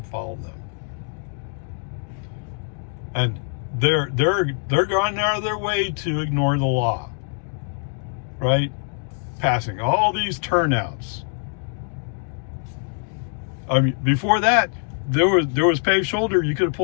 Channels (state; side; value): silent; right; 55 dB below the other